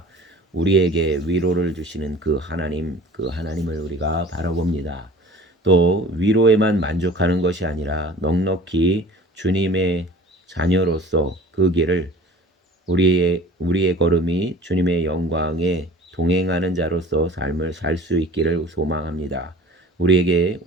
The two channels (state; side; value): normal; both; correlation 0.44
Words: 우리에게 위로를 주시는 그 하나님을 우리가 바라봅니다. 또 위로에만 만족하는 것이 아니라 넉넉히 주님의 자녀로서 그 길을 우리의 걸음이 주님의 영광에 동행하는 자로서 삶을 살 수 있기를 소망합니다. 우리에게